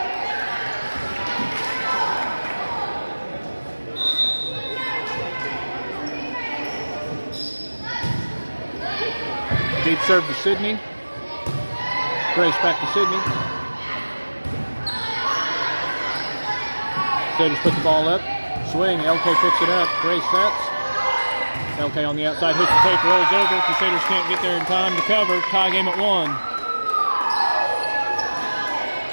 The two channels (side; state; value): both; inverted; correlation -1.00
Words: Deep serve to Sydney. Grace back to Sydney. Crusaders put the ball up. Swing. LK picks it up. Grace sets. LK on the outside. Hits the tape. Rolls over. Crusaders can't get there in time to cover. Tie game at 1.